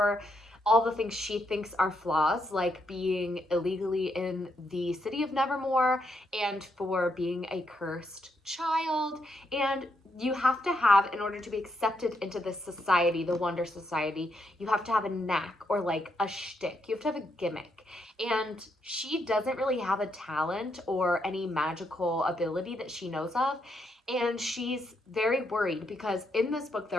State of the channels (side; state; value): both; normal; correlation 0.79